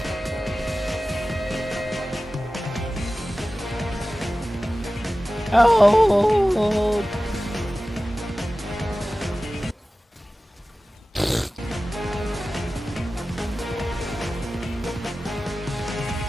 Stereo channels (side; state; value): both; normal; correlation 0.96